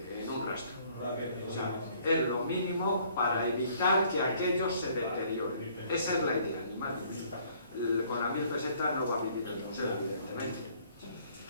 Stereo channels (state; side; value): inverted; both; correlation -0.61